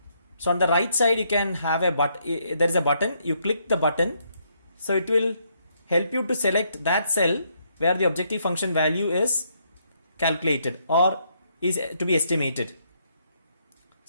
So on the right side you can have a button, there is a button, you click the button, so it will help you to select that cell where the objective function value is calculated or is to be estimated.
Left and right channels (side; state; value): both; inverted; correlation -0.73